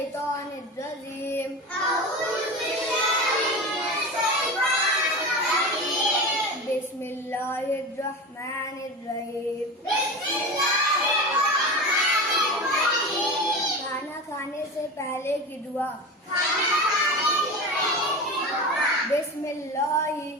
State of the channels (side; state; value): both; normal; correlation 0.27